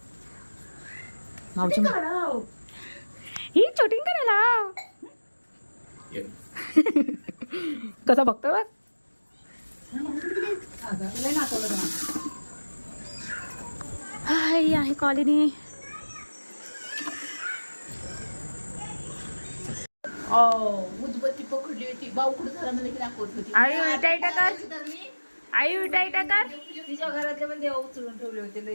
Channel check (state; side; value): inverted; both; correlation -1.00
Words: माऊची ही शूटिंग करायला कसा बघतो बघ हाय आहे कॉलनी उदबत्ती पकडली होती बावकुड झाला मला की दाखवत होती आई उलटाई टाकर आई उलटाई टाकर तिच्या घरातले पण देव उचलून ठेवले होते